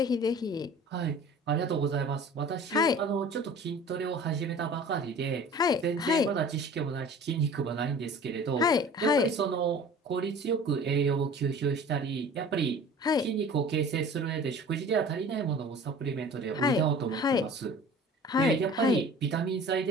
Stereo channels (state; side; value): normal; both; correlation 0.44